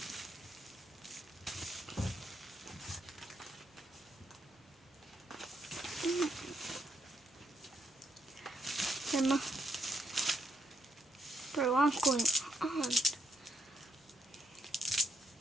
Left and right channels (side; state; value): both; normal; correlation 0.77